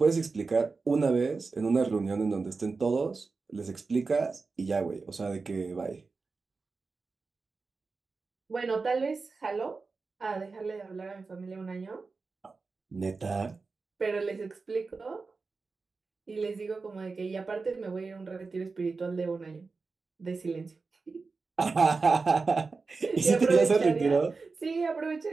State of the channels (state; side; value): quieter; left; 4.2 dB